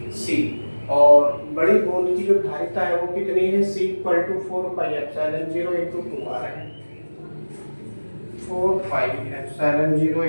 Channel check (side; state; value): both; inverted; correlation -1.00